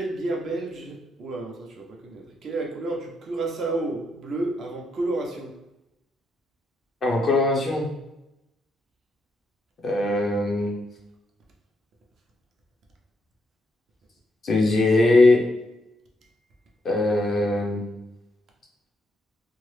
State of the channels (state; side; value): normal; both; correlation 0.79